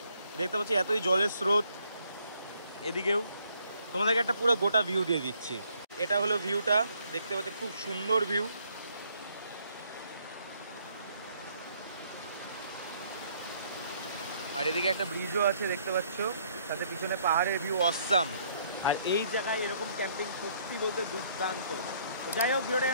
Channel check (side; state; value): both; inverted; correlation -0.67